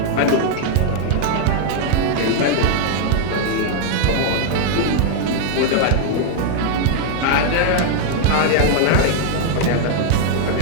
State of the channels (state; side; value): different; both; correlation -0.01